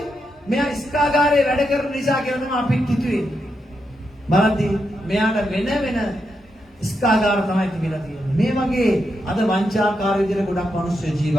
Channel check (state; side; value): normal; both; correlation 0.84